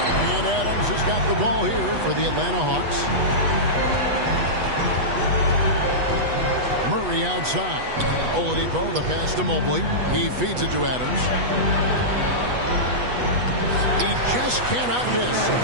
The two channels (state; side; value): late; left; 8.2 ms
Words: And Adams has got the ball here for the Atlanta Hawks. Murray outside. Oladipo, the pass to Mobley. He feeds it to Adams. He just cannot miss.